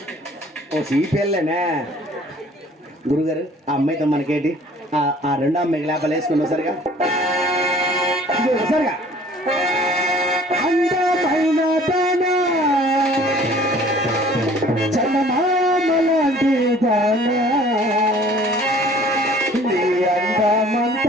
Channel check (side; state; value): both; normal; correlation 0.52